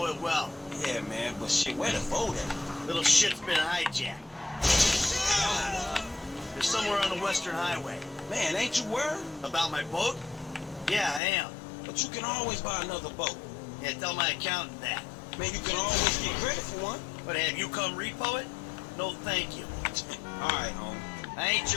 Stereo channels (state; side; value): drops out; right; at 11.2 s